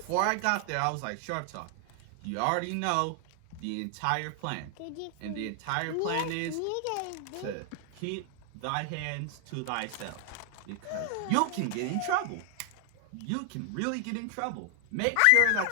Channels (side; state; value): both; different; correlation 0.00